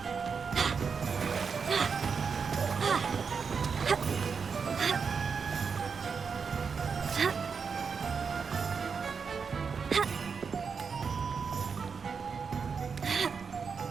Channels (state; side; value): quieter; left; 5.7 dB